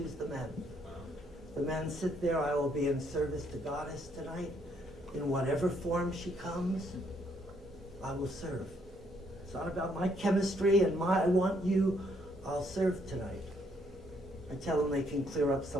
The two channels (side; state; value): both; normal; correlation 0.70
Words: the men. The men sit there, I will be in service to Goddess tonight. In whatever form she comes, I will serve. It's not about my chemistry and I want you, I'll serve tonight. I tell them they can clear up